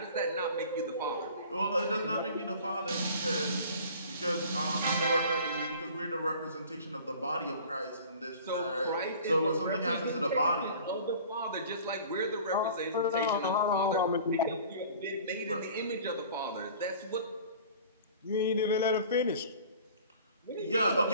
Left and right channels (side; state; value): both; inverted; correlation -0.45